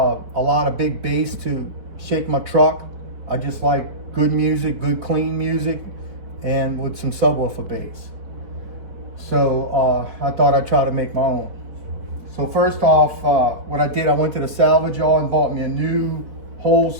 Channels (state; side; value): late; left; 4.6 ms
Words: lot of big bass to shake my truck. I just like good music, good clean music, and with some subwoofer bass. So I thought I'd try to make my own. So first off, what I did, I went to the salvage yard and bought me a new whole